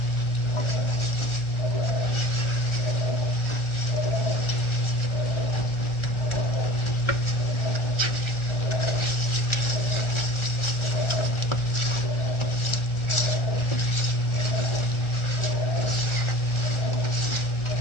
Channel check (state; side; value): late; right; 1.4 ms